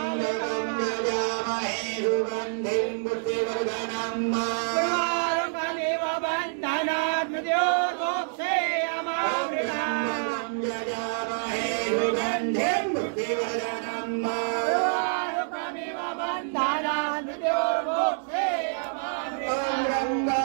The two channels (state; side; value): silent; left; 60 dB below the other